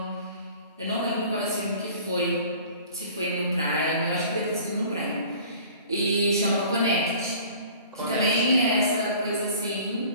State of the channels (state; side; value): inverted; both; correlation -0.47